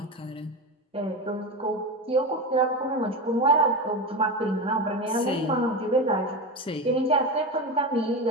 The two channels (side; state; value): both; normal; correlation 0.20